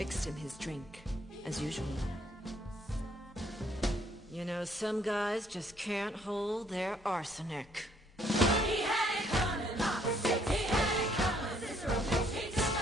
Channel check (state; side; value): normal; both; correlation 0.66